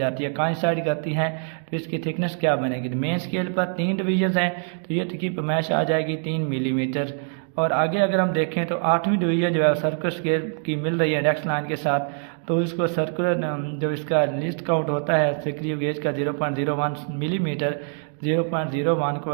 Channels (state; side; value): silent; left; 56 dB below the other